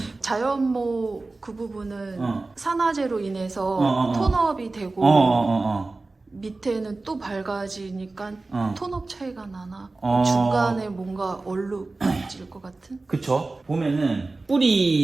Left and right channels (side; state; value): left; quieter; 3.4 dB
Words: 자연모 그 부분은 산화제로 인해서 톤업이 되고 밑에는 또 밝아지니까 톤업 차이가 나나 중간에 뭔가 얼룩질 것 같은? 그쵸. 보면은